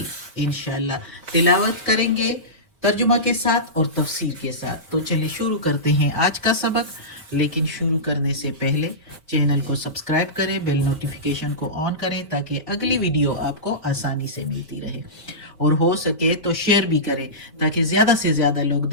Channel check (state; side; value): normal; both; correlation -0.18